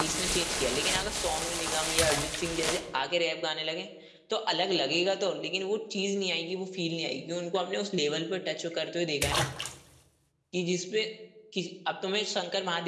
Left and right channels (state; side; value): identical; both; correlation 1.00